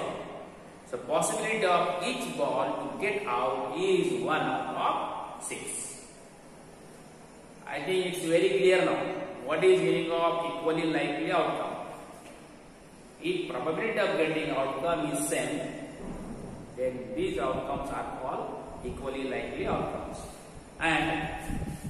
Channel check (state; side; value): identical; both; correlation 1.00